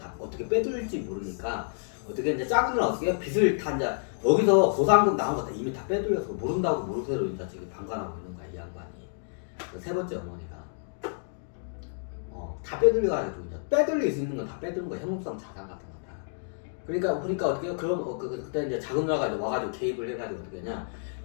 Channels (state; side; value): silent; right; digital silence